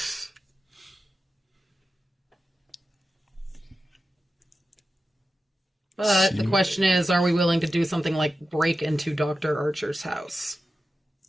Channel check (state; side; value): normal; both; correlation 0.92